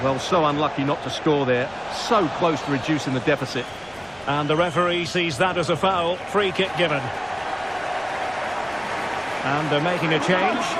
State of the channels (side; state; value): left; noise; rumble, 27 dB below the sound